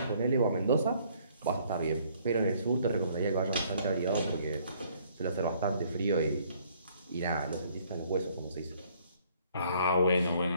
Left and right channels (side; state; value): both; inverted; correlation -0.62